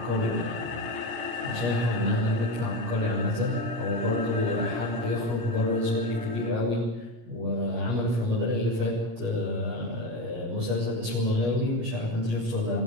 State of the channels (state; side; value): late; left; 17 ms